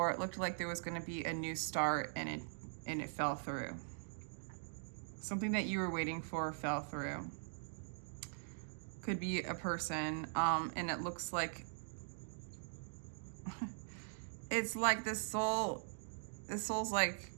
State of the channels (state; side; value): silent; left; digital silence